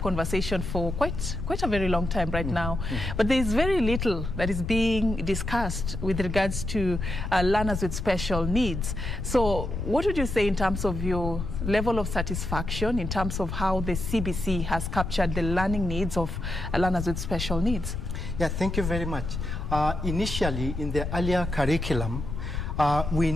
for quite a very long time right now, but there is very little that is being discussed with regards to learners with special needs. So what would you say in terms of your level of satisfaction, in terms of how the CBC has captured the learning needs of learners with special needs? Yeah, thank you very much. Initially, in the earlier curriculum, we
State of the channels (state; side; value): noise; left; rumble, 4 dB below the sound